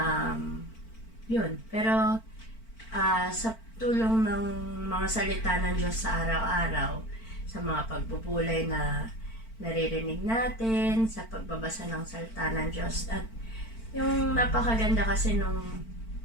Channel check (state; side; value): late; right; 4.5 ms